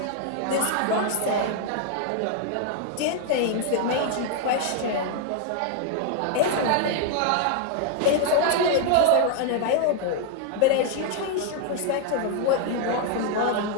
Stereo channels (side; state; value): both; different; correlation 0.00